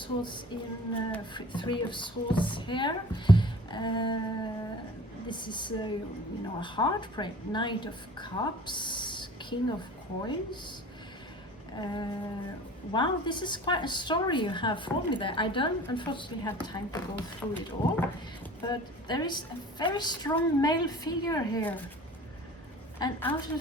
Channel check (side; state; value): both; normal; correlation 0.44